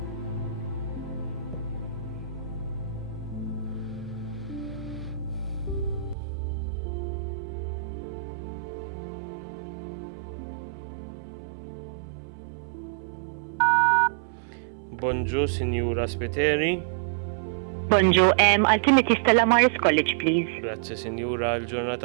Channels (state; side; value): drops out; left; at 6.2 s